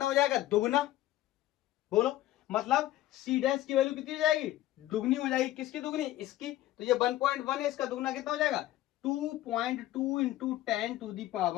हो जाएगा, दुगना, बोलो, मतलब सी डैश की वैल्यू कितनी हो जाएगी, दुगनी हो जाएगी, किसकी दुगनी, इसकी, तो ये 1.1 है, इसका दुगना कितना हो जाएगा, 2.2 into 10 to the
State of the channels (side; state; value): right; quieter; 14.8 dB